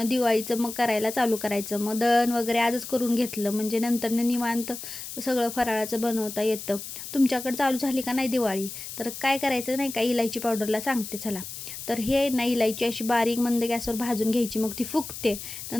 दिवाळीचं मग करायला चालू करायचं. मग दळण वगैरे आजच करून घेतलं म्हणजे नंतरनं निवांत सगळं फराळाचं बनवता येतं. तुमच्याकडे चालू झाली का नाही दिवाळी? तर काय करायचं नाही का, इलायची पावडरला सांगते चला. तर हे ना इलायची अशी बारीक मंद गॅसवर भाजून घ्यायची, मग ती फुगते.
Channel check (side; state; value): left; noise; hiss, 9 dB below the sound